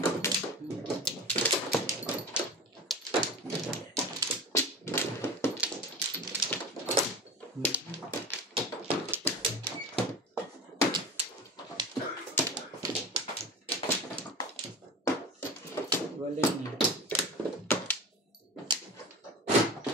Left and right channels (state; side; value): normal; both; correlation 0.32